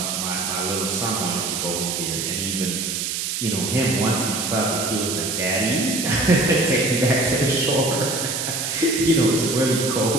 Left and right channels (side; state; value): right; noise; hiss, 2 dB below the sound